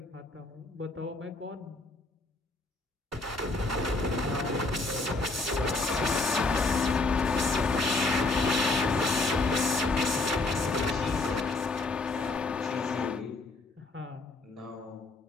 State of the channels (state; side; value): quieter; right; 3.3 dB